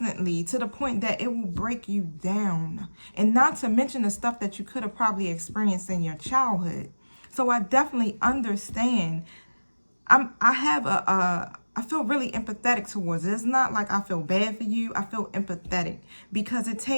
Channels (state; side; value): inverted; both; correlation -1.00